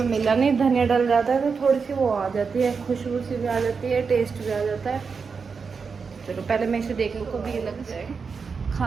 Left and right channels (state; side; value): quieter; left; 5.4 dB